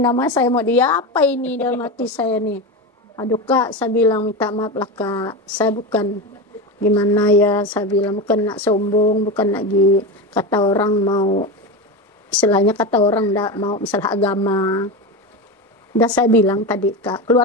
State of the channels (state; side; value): normal; both; correlation 0.20